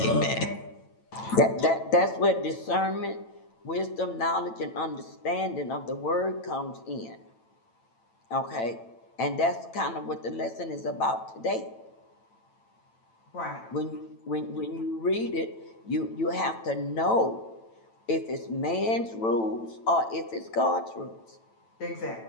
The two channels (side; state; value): right; late; 9.0 ms